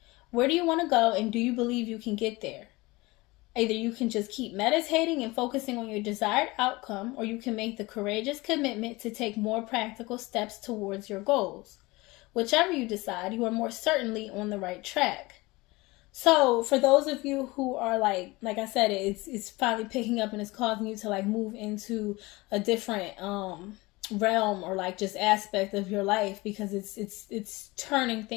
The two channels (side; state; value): right; quieter; 22.2 dB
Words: Where do you want to go, and do you believe you can get there? Either you can just keep meditating and focusing on your desired outcome, or you can make the courageous commitment to take more practical steps towards your goals. Whichever you decide, you are more certainly on the right track. So for those of you who are like I said, it's finally picking up and it's causing you to like move into a different realm, or like just aspect of your life, because it's turning